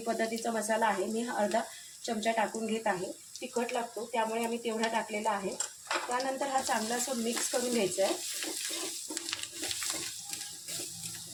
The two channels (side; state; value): both; identical; correlation 1.00